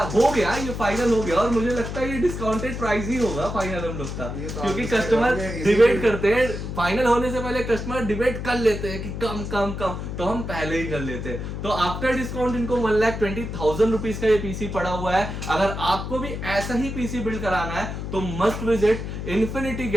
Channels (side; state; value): left; noise; hum, 6 dB below the sound